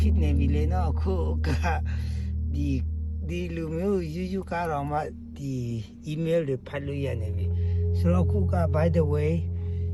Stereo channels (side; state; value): both; identical; correlation 1.00